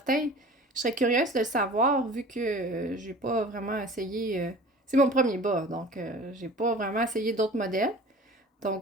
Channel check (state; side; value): normal; both; correlation 0.42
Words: Je serais curieuse de le savoir, vu que j'ai pas vraiment essayé... c'est mon premier bas, donc j'ai pas vraiment essayé d'autres modèles.